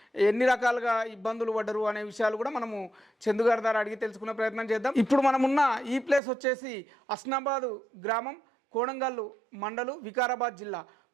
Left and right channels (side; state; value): left; drops out; at 6.2 s